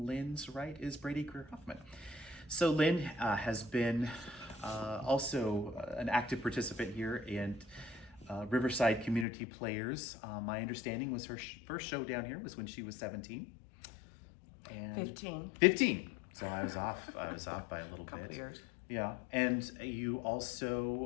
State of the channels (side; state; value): right; drops out; at 9.2 s